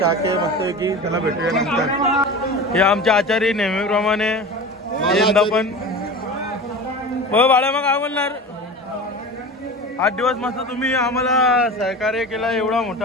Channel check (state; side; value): normal; both; correlation 0.32